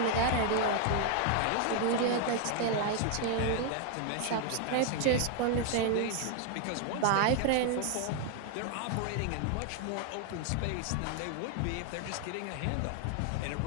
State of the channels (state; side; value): different; both; correlation 0.01